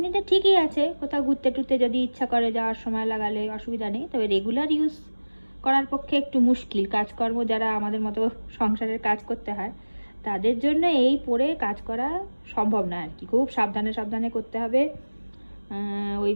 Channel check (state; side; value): inverted; both; correlation -1.00